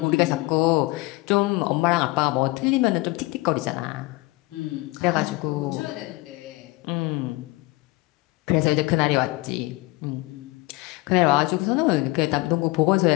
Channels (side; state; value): right; quieter; 22.3 dB